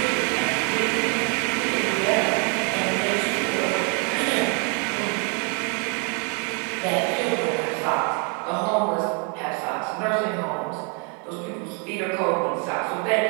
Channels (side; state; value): left; quieter; 37.1 dB